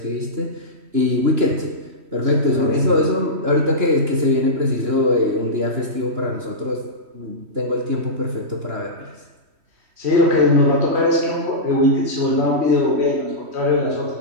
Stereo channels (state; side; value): late; left; 3.1 ms